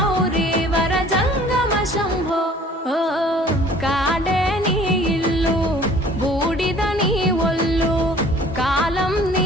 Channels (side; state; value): both; normal; correlation 0.51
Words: वर जंगम शम्भो ओ काडे नी इल्लु बूडिद नी ఒళ్ళు కాలం